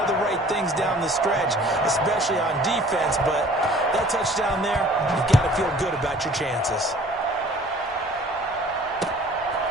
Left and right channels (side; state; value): both; normal; correlation 0.51